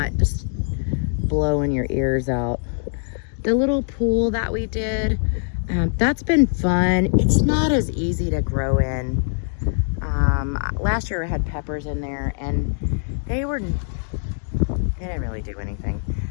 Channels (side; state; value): right; silent; digital silence